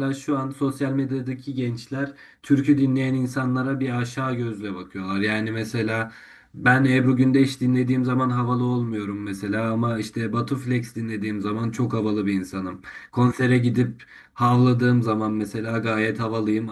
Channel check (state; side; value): identical; both; correlation 1.00